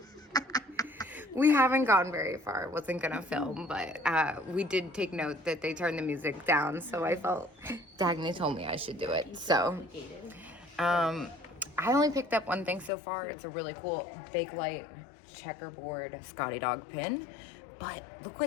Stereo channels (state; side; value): drops out; right; at 12.9 s